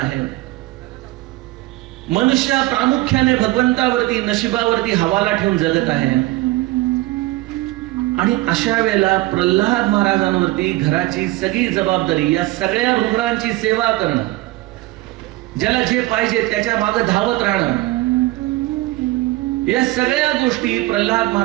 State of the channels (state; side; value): quieter; left; 19.1 dB